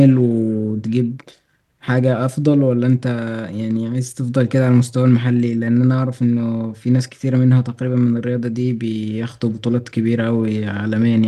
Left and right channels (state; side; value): identical; both; correlation 1.00